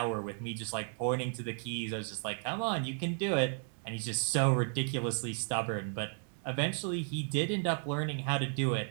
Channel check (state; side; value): silent; left; 55 dB below the other